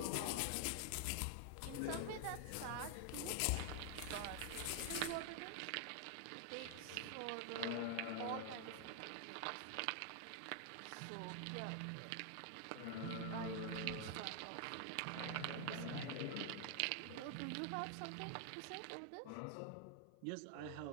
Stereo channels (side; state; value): both; different; correlation 0.00